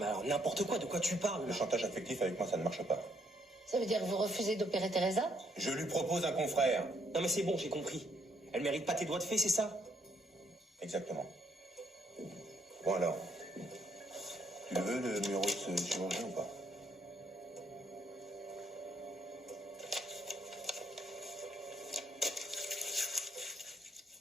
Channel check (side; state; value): both; normal; correlation 0.71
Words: alors n'importe quoi, de quoi tu parles? Le chantage affectif avec moi, ça ne marche pas. Ça veut dire que vous refusez d'opérer Teresa? Je lui propose un confrère. Non, mais c'est bon, j'ai compris. Elle mérite pas tes doigts de fée, c'est ça? Exactement. Bon alors, tu le veux, le numéro de ce chirurgien ou pas?